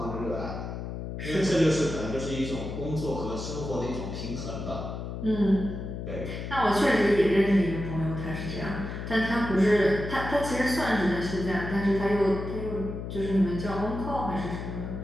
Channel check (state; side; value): noise; left; hum, 6 dB below the sound